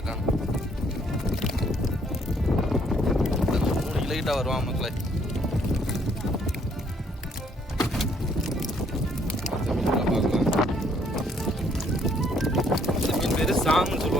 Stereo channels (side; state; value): both; normal; correlation 0.66